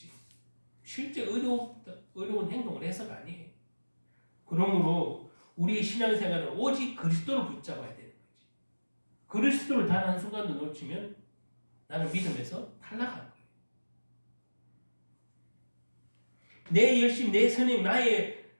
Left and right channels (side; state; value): both; inverted; correlation -1.00